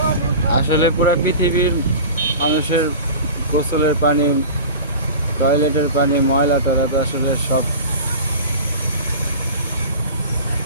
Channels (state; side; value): inverted; both; correlation -0.35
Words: আসলে পুরো পৃথিবীর মানুষের গোসলের পানি, টয়লেটের পানি, ময়লা টয়লা তো আসলে সব